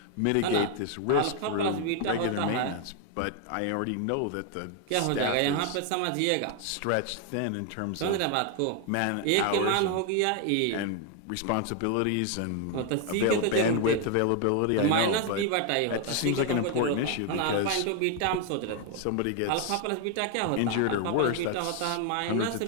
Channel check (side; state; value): both; different; correlation 0.01